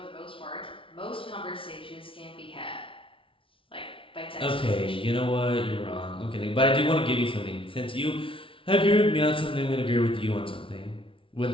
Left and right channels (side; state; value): right; late; 0.25 ms